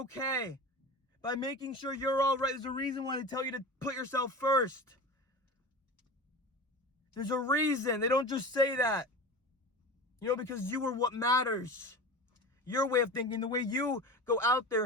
by making sure you're all right. There's a reason why they tell you to put yourself first. There's a reason. They don't just say that. You know, because you are what matters. Your way of thinking, the way you go out there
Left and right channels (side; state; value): both; normal; correlation 0.31